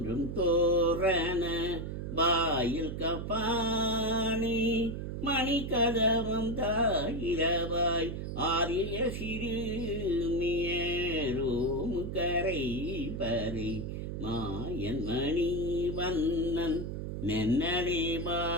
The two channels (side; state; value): right; noise; hum, 5 dB below the sound